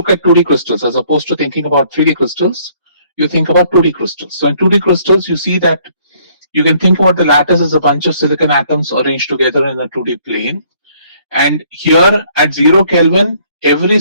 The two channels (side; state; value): both; inverted; correlation -0.63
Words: at 2D crystals as opposed to thinking about 3D crystals. You think about 2D crystals. So in 2D crystals, you see that you can think about the lattice as a bunch of silicon atoms arranged together in a 2D plane. And here at 0 Kelvin, every